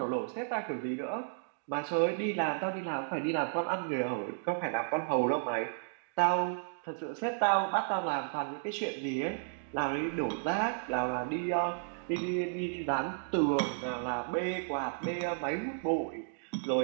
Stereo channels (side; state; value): left; silent; digital silence